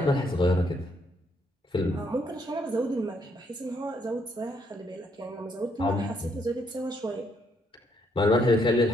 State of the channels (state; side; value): normal; both; correlation 0.72